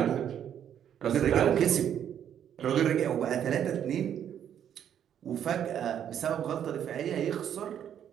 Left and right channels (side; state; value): left; quieter; 9.5 dB